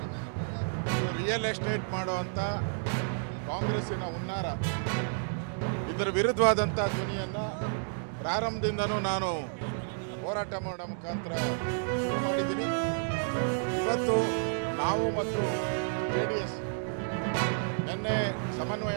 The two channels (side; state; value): left; silent; digital silence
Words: ಇದು ರಿಯಲ್ ಎಸ್ಟೇಟ್ ಮಾಡುವಂಥ ಕಾಂಗ್ರೆಸ್ಸಿನ ಹುನ್ನಾರ, ಇದರ ವಿರುದ್ಧವಾದಂಥ ಧ್ವನಿಯನ್ನು ಪ್ರಾರಂಭದಿಂದನೂ ನಾನು ಹೋರಾಟ ಮಾಡೋ ಮುಖಾಂತರ ಶುರು ಮಾಡಿದ್ದೀನಿ. ಇವತ್ತು ನಾವು ಮತ್ತು JDS ನಿನ್ನೆ